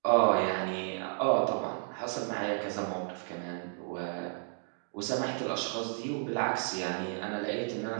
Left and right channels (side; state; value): left; silent; 56 dB below the other